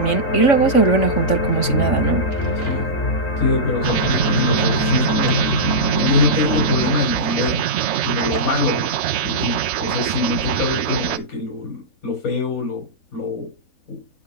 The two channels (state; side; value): late; right; 3.5 ms